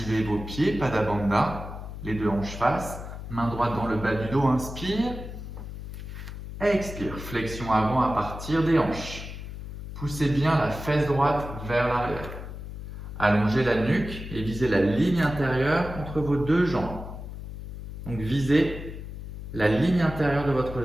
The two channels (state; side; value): noise; left; hum, 10 dB below the sound